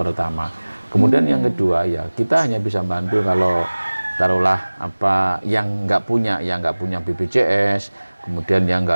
Kemudian yang kedua ya kita hanya bisa bantu kalau taruhlah yang nggak punya BPJS, kemudian yang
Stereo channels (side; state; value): both; inverted; correlation -1.00